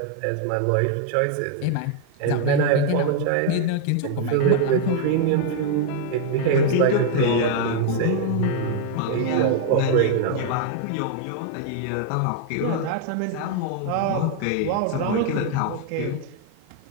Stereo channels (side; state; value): both; different; correlation 0.00